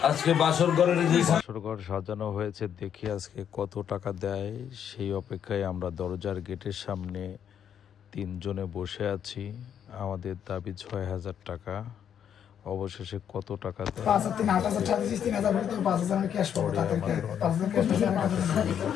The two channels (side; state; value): right; quieter; 8.8 dB